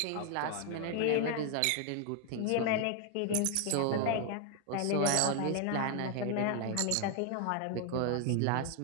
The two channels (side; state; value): both; different; correlation 0.00